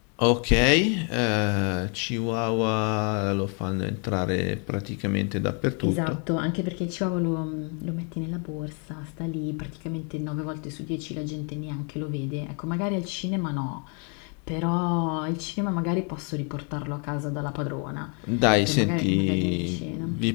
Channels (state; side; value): quieter; right; 38.2 dB